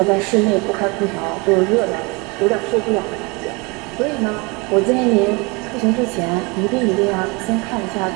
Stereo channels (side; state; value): left; quieter; 27.4 dB